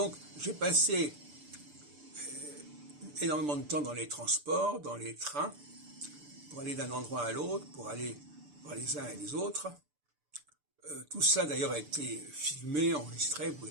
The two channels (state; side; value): late; left; 6.8 ms